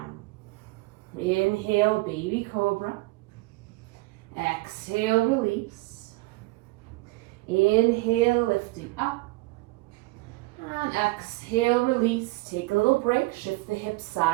Inhale, baby cobra. Exhale, release. Inhale, lifting up. And exhale, release. Take a little break. Shift the hips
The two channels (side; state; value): left; quieter; 22.2 dB